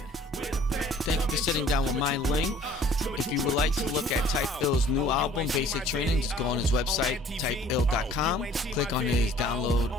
Thank you for sitting down with Myling. If you would like to look at Typ Ill's new album, Basic Training, just go on his website, typill.com, click on his download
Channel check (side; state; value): both; normal; correlation 0.53